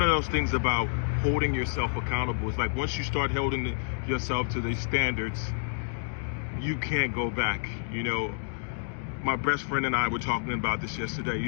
of those things about holding yourself accountable is like once you start holding yourself to these standards, you can't go back. You know, my best friend and I were talking about this yesterday. He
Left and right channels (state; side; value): silent; right; digital silence